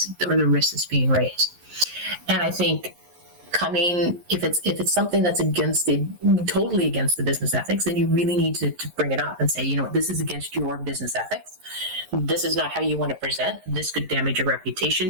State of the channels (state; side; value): late; left; 11 ms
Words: or the risk that's being raised. And I think if it's something that's totally against the business ethics, then you really need to bring it up and say, this is against your business ethics. This is not how you want to present. This could damage your